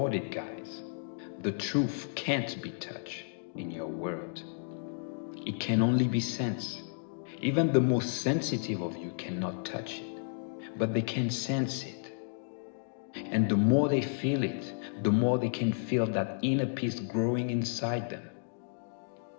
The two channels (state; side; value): silent; right; digital silence